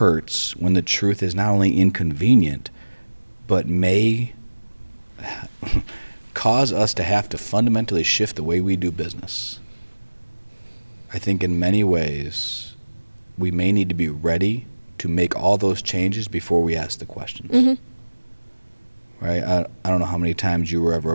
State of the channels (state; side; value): inverted; both; correlation -1.00